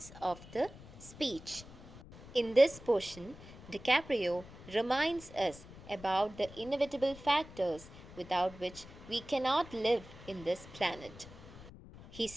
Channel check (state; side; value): noise; left; rumble, 17 dB below the sound